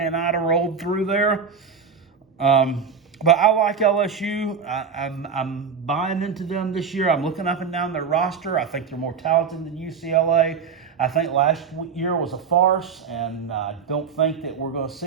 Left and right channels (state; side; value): quieter; left; 6.2 dB